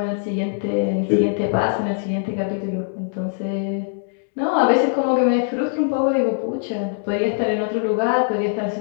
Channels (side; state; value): right; silent; digital silence